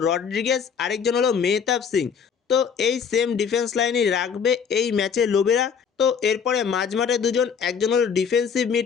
রড্রিগেজ, আরেকজন হলো মেহতাব সিং। তো এই সেম ডিফেন্স লাইনই রাখবে এই ম্যাচে লোবেরা। তো এরপরে মাঝমাঠে দুজন, একজন হলো ডিফেন্সিভ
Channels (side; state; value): right; quieter; 6.7 dB